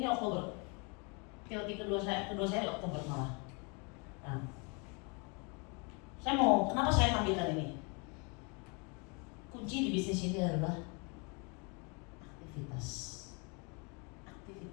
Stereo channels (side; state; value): right; quieter; 32.2 dB